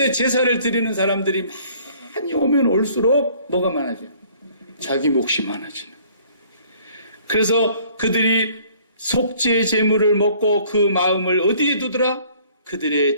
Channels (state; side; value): inverted; both; correlation -0.57